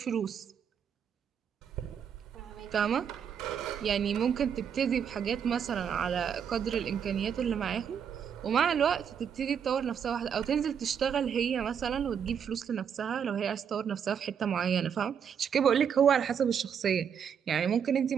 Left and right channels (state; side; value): quieter; left; 7.7 dB